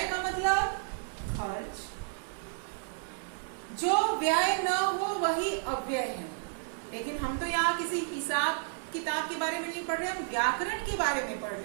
का मतलब खर्च। जो व्यय न हो वही अव्यय है। लेकिन हम तो यहाँ किसी हिसाब किताब के बारे में नहीं पढ़ रहे, हम व्याकरण के बारे में पढ़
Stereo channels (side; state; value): left; silent; 57 dB below the other